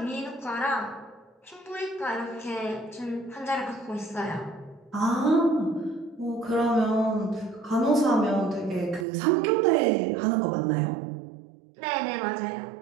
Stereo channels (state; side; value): drops out; left; at 9.1 s